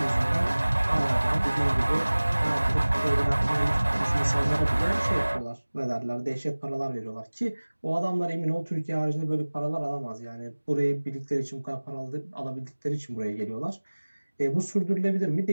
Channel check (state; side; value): inverted; both; correlation -1.00